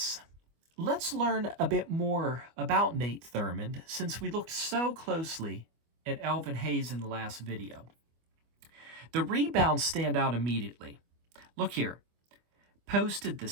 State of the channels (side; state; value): left; late; 25 ms